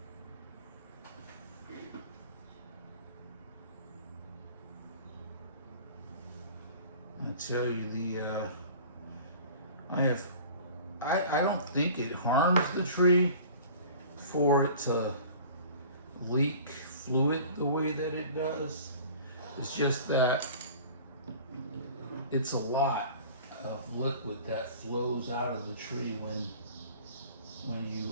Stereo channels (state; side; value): inverted; both; correlation -0.44